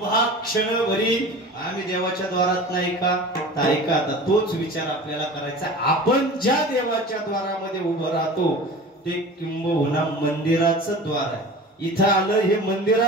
क्षणभरी आम्ही देवाच्या द्वारात नाही का? तर ऐका, आता तोच विचार आपल्याला करायचा. आपण ज्या देवाच्या द्वारामध्ये उभं राहतो ते किंबहुना मंदिराचं द्वार आहे. इथं आलं हे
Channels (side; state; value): both; normal; correlation 0.37